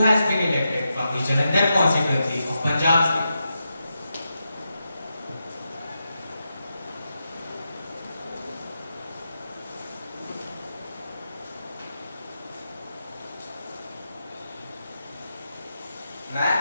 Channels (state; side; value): inverted; both; correlation -0.87